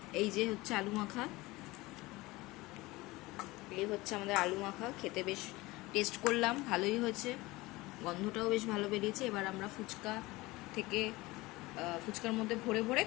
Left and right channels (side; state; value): right; quieter; 20.8 dB